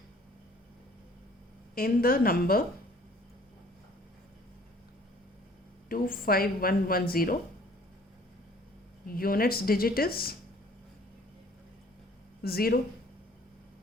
In the number 25110 units digit is 0,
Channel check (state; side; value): normal; both; correlation 0.55